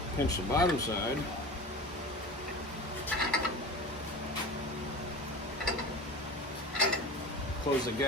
pinch the bottom side. Close the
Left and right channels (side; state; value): both; normal; correlation 0.33